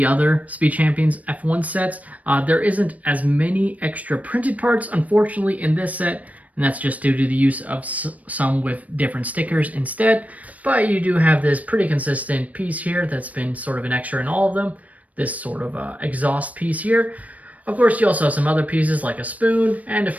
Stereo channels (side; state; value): left; late; 0.070 ms